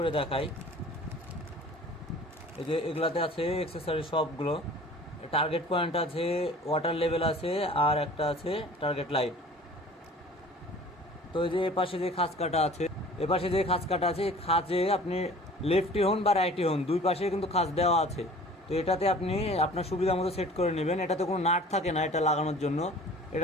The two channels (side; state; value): both; normal; correlation 0.46